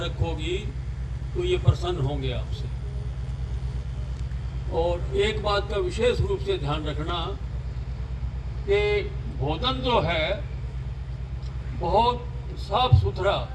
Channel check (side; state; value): both; identical; correlation 1.00